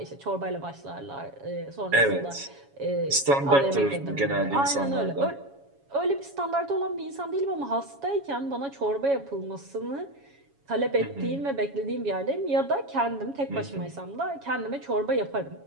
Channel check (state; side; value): late; left; 7.2 ms